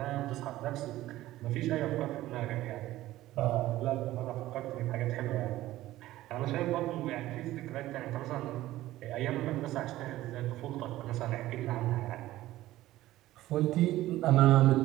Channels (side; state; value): left; quieter; 15.7 dB